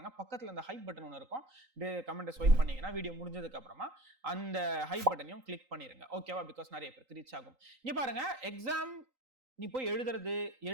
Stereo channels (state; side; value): late; left; 3.9 ms